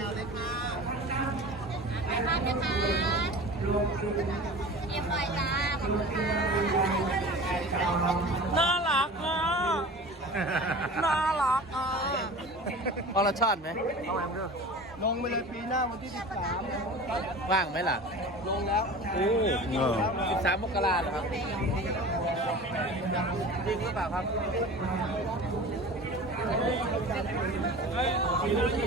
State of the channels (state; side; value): normal; both; correlation 0.37